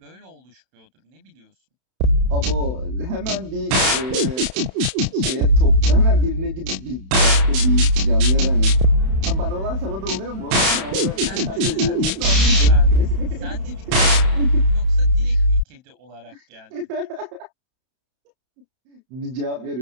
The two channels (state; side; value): late; left; 31 ms